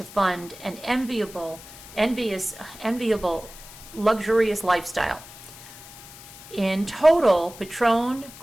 fund an enviable, luxurious lifestyle. In total, Patron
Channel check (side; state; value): left; noise; hiss, 17 dB below the sound